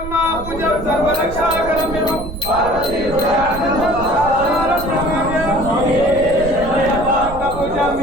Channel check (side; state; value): right; noise; rumble, 10 dB below the sound